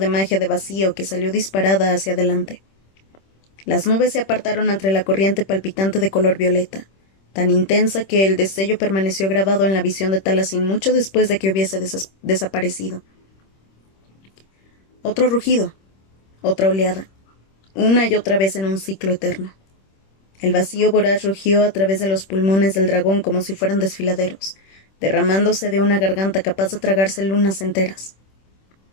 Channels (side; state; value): right; late; 26 ms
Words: magia de vacío que salió disparada hacia adelante. Las nubes se apartaron entre la corriente palpitante de color violeta, tan intensa que el destello permaneció grabado en la visión de Talasin mucho después de que hubiese desaparecido. Otro rugido, otra oleada, una y otra vez en un ciclo eterno. El vacío voraz rugió a través de los pulmones del dragón como si fueran desfiladeros, derramándose de una garganta capaz de tragarse lunas enteras.